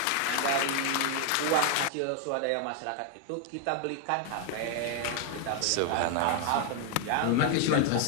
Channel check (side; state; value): both; different; correlation 0.00